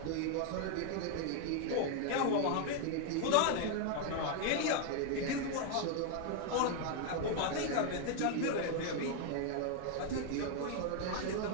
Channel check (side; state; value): both; different; correlation 0.00